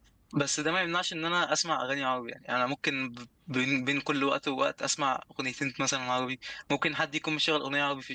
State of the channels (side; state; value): both; identical; correlation 1.00